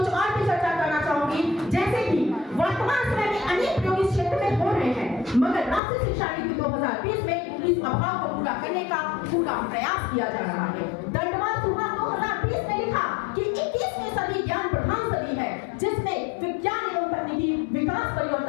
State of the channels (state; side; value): drops out; right; at 5.8 s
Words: और भी चर्चा करना चाहूंगी। जैसे कि वर्तमान समय में अनेक प्रयोग इस क्षेत्र में हो रहे हैं, मगर राष्ट्रीय शिक्षा नीति 2020 में इस अभाव को पूरा करने का पूरा प्रयास किया जा रहा है। दंडवाद सुभाष 2020 में लिखा कि 21वीं सदी ज्ञान प्रधान सदी है जिसमें विज्ञान एवं तकनीकी विकास